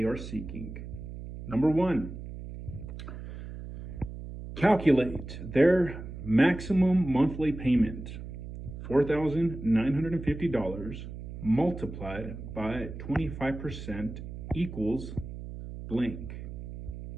are seeking. Number 1, calculate their maximum monthly payment. $4,950 multiplied by 25% equals blank.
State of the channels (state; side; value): noise; right; hum, 10 dB below the sound